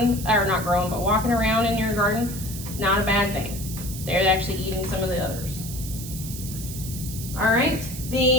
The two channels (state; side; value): noise; right; hiss, 10 dB below the sound